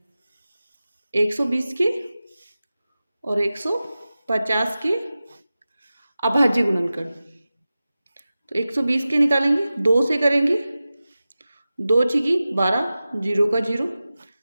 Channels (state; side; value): inverted; both; correlation -0.95